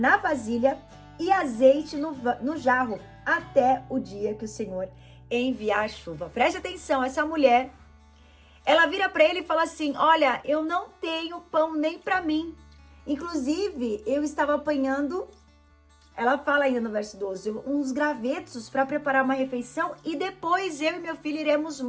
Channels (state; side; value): identical; both; correlation 1.00